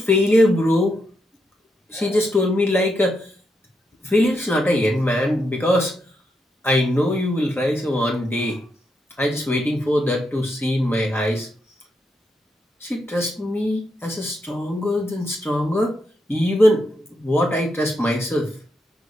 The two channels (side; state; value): both; normal; correlation 0.82